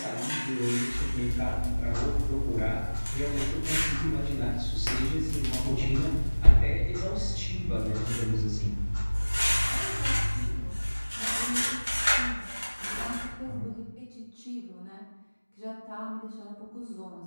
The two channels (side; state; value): both; inverted; correlation -1.00